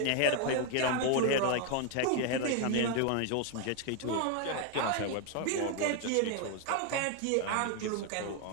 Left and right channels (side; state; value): both; different; correlation 0.01